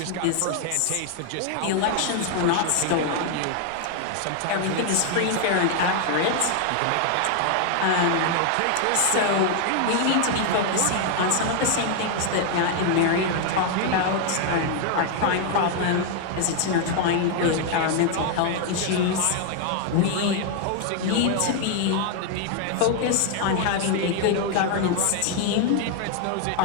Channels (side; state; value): both; different; correlation 0.00